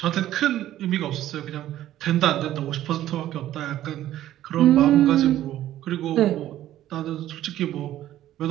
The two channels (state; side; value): quieter; left; 13.2 dB